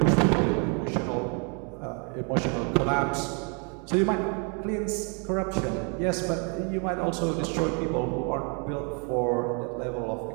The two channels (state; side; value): quieter; left; 36.7 dB